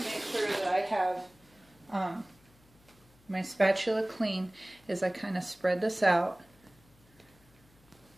to make sure that I have my spatula clean as I kind of spread this out.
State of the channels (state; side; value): noise; left; hum, 29 dB below the sound